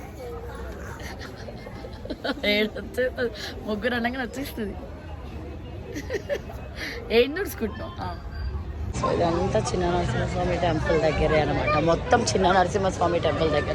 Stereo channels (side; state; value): both; identical; correlation 1.00